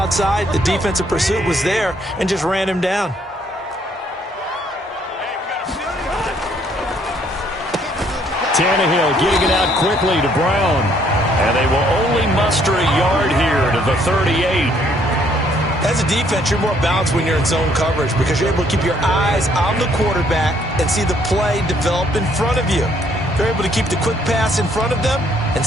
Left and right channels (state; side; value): normal; both; correlation 0.66